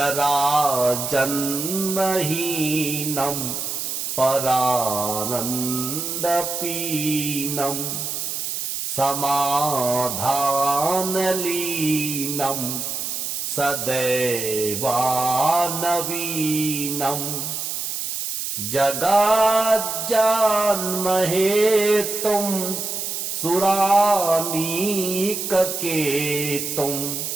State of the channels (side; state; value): right; noise; hiss, 4 dB below the sound